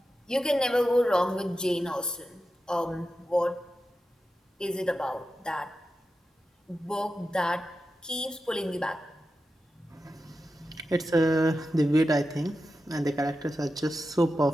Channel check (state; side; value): normal; both; correlation 0.91